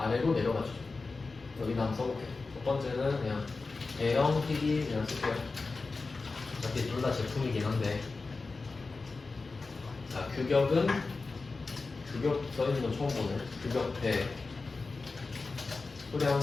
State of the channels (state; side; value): quieter; right; 3.9 dB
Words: 내려가죠. 여기다 한번 써볼게요. 첫 번째는 그냥 대형 TV 그냥 쓸게요. 어차피 둘 다 제품이긴 한데. 자, 규격은 규격 써있는 거 처음 보네. 규격대 수량